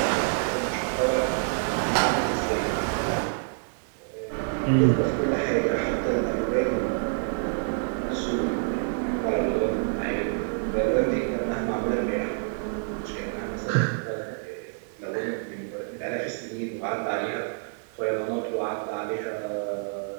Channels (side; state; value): left; silent; digital silence